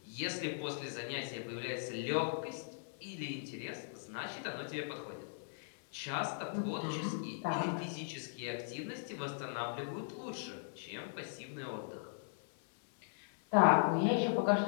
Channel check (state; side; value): silent; right; 52 dB below the other